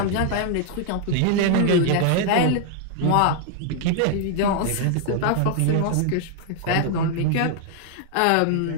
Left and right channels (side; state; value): both; different; correlation 0.00